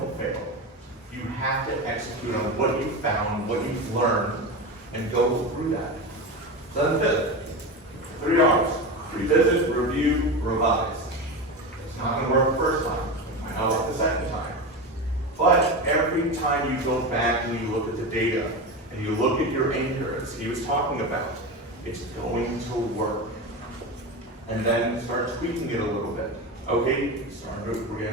fail? You have to execute on what you found, what you've learned, and go through that. So then 5th, 3 R's. Revisit, review, revise. It's not going to work the first time. It might not work the second time. But every time you go back and you look at the data and you look at your anchor, as he was talking about, it's going to work. And then start tweaking it a little bit. Okay, we're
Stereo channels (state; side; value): normal; both; correlation 0.22